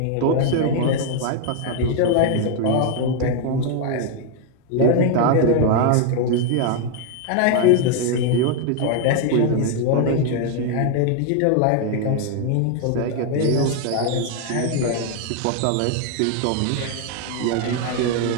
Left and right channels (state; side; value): different; both; correlation 0.01